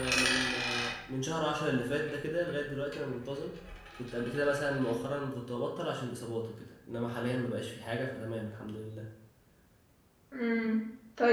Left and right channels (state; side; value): identical; both; correlation 1.00